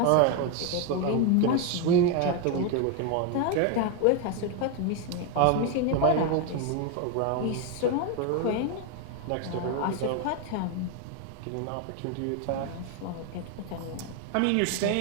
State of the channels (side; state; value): both; different; correlation 0.01